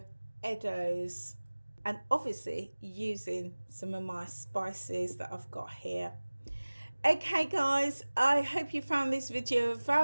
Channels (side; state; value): both; inverted; correlation -1.00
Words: eddos, and obviously using some of my spices that I've got here. Okay guys, I hope you found this video of